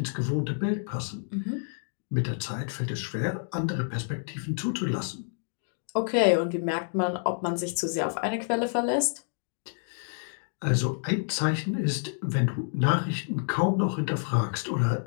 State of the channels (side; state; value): right; silent; digital silence